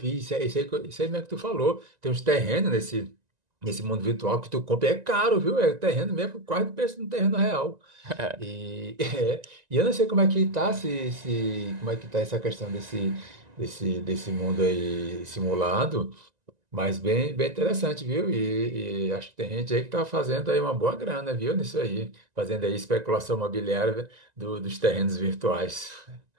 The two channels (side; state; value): left; late; 1.9 ms